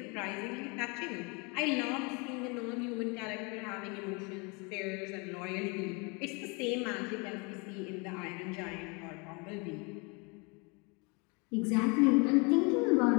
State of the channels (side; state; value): right; quieter; 30.4 dB